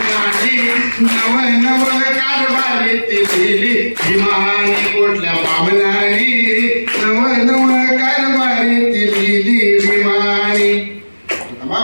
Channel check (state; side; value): inverted; both; correlation -1.00